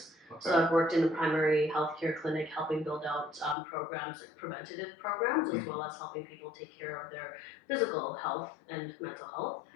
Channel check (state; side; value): drops out; right; at 3.6 s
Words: Okay. So I've worked in a primary healthcare clinic, helping build out programs, like preventative programs, as well as helping people take care of their physical health and mental health.